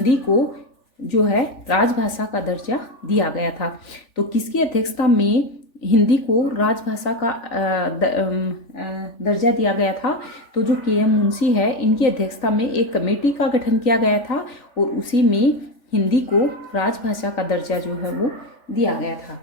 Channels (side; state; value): right; late; 3.4 ms